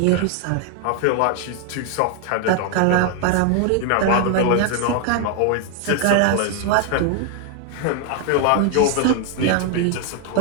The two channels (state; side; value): different; both; correlation 0.00